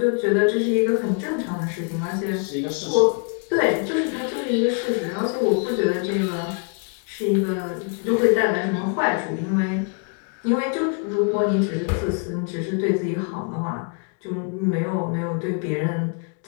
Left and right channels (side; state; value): right; quieter; 39.3 dB